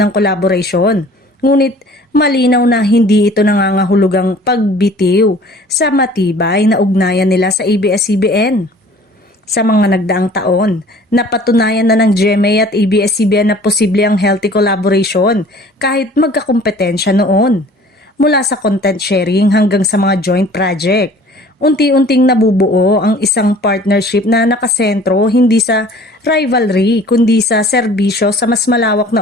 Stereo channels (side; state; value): both; normal; correlation 0.50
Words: collaboration. Ngunit malinaw na hindi ito nangangahulugang pagbitiw sa matibay na ugnayan nila sa ABS-CBN. Sa mga nagdaang taon, napatunayan na ng GMA at ABS-CBN na posible ang healthy collaboration kahit magkakompetensya noon. Mula sa content sharing hanggang sa mga joint project, unti-unting nabubuo ang isang partnership na nakasentro hindi sa rivalry kundi sa serbisyo sa mas malawak